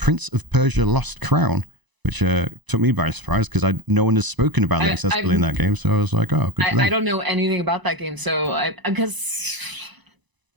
of Persia Lost Crown, which took me by surprise because no one has spoken about the accessibility in that game. So I was like, oh, good for them. I don't know anything about that game, so because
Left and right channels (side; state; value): left; late; 1.0 ms